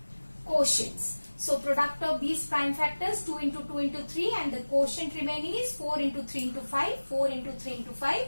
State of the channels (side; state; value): both; inverted; correlation -1.00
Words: quotients. So product of these prime factors 2 into 2 into 3 and the quotient remaining is 4 into 3 into 5, 4 into 3 into 5.